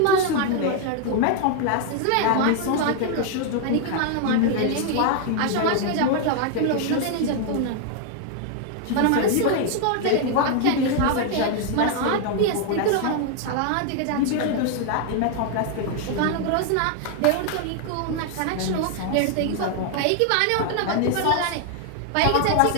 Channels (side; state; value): both; different; correlation 0.00